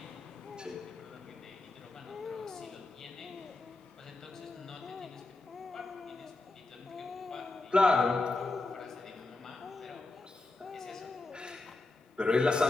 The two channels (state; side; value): quieter; right; 3.2 dB